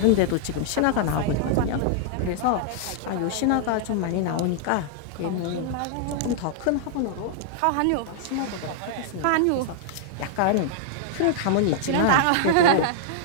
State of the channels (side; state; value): both; different; correlation 0.00